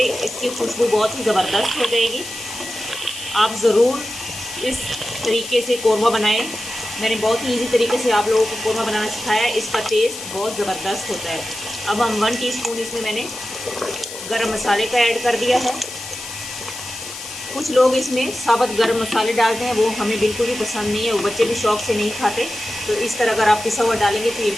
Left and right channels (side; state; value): left; noise; hiss, 11 dB below the sound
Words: इसकी खुशबू बहुत ही ज़बरदस्त हो जाएगी। आप ज़रूर इस तरीके से कौरमा बनाएं। मैंने बहुत ही इजी तरीके से आप लोगों को कौरमा बनाना सिखाया है। इसका टेस्ट बहुत ज़बरदस्त होता है। अब हम 1 टीस्पून इसमें मैंने गरम मसाले का ऐड कर दिया है। कुछ लोग इसमें साबुत गरम मसाले डालते हैं, वो हमें बिल्कुल भी पसंद नहीं है, वो बच्चे भी शौक से नहीं खाते। तो इस तरह अगर आप पिसा हुआ डालेंगे तो ये